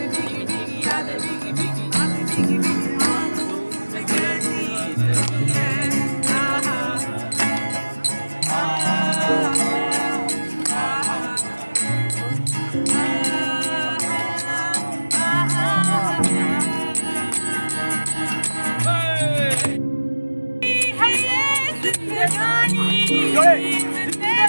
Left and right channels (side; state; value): both; inverted; correlation -1.00